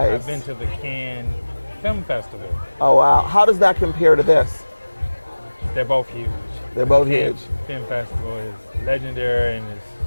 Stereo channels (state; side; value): inverted; both; correlation -1.00